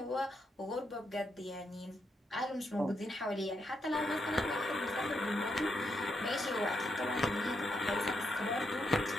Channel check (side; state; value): both; normal; correlation 0.80